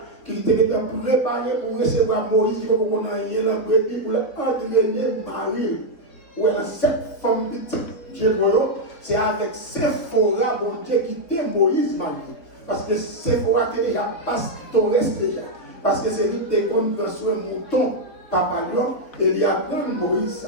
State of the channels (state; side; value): late; right; 3.9 ms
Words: qui était préparé pour recevoir Moïse, qui pour qu'on aille la brebis pour entraîner Marie. Où elle a 7 femmes petites. C'est avec Sephora, bon Dieu, qui était Moïse Marie. Parce que Sephora était déjà pastoresse déjà. Parce que c'est lui qui était comme un mouton, papa lion, et il apprend Moïse